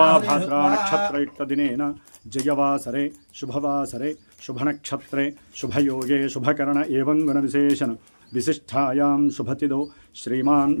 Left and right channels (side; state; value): both; inverted; correlation -1.00